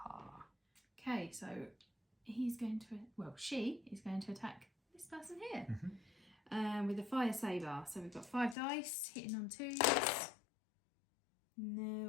Okay, so he's going to, well, she is going to attack this person here. With a fire saber. So we've got 5 dice hitting on 2s. There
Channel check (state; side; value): drops out; right; at 8.6 s